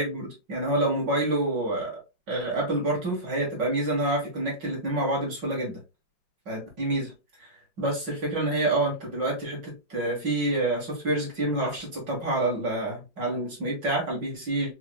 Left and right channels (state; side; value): late; left; 5.4 ms